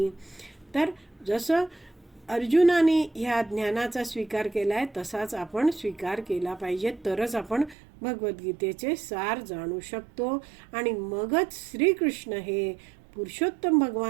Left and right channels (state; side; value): drops out; left; at 7.8 s